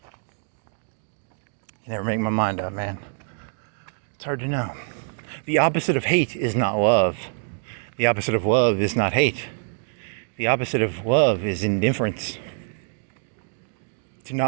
never make my mind up, man. It's hard to know. The opposite of hate is not love. The opposite of love is not hate. The opposite of love is indifference. To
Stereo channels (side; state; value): left; silent; digital silence